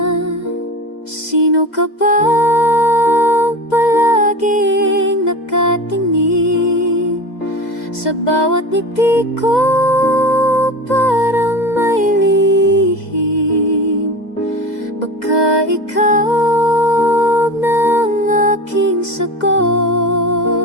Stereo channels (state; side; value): late; right; 2.0 ms